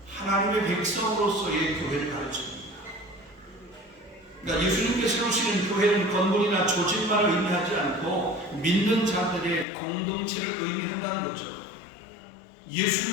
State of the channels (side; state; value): right; drops out; at 9.7 s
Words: 하나님의 백성으로서의 교회를 가르칩니다. 그러니까 예수님께 세우시는 교회는 건물이나 조직만을 의미하지 않고 믿는 자들의 공동체를 의미한다는 거죠.